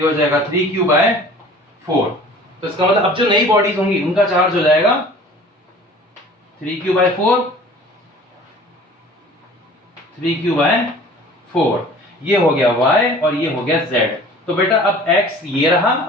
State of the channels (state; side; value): normal; both; correlation 0.46